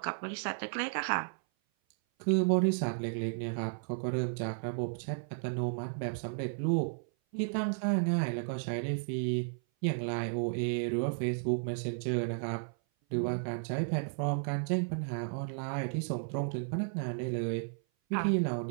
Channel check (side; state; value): left; silent; 55 dB below the other